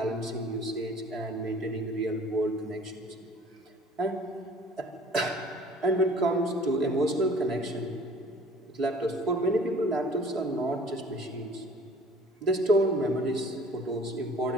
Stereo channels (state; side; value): normal; both; correlation 0.50